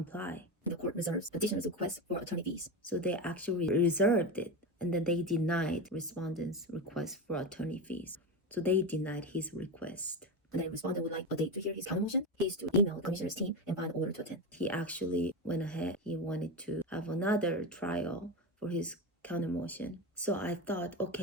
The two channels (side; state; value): both; normal; correlation 0.18